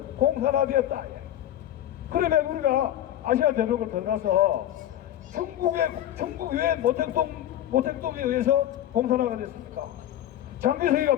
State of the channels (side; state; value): right; quieter; 12.2 dB